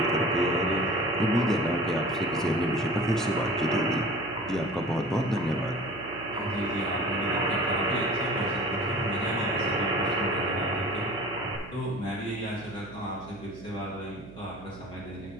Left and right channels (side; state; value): right; noise; hum, 16 dB below the sound